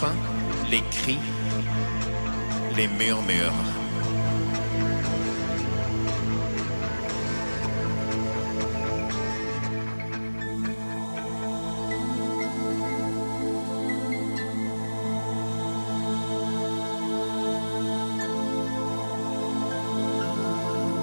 les cris, les murmures.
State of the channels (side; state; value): both; inverted; correlation -1.00